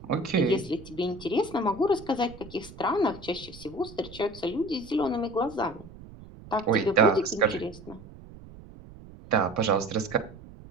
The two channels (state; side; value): noise; right; rumble, 18 dB below the sound